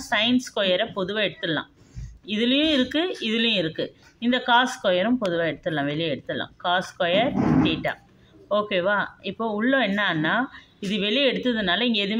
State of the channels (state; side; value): identical; both; correlation 1.00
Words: சைன் ஸ்கொயரை பொதுவாக எடுத்துடலாம். இதுலேயும் இருக்குது, இதுலேயும் இருக்குது. இந்த காஸ் ஸ்கொயரும் பொதுவாக எடுத்துடலாம், வெளியே எடுத்துடலாம். Cos square theta. ஓகேவா? இப்போது உள்ள என்னன்னா இது வெளியே எடுத்ததுனால இங்கே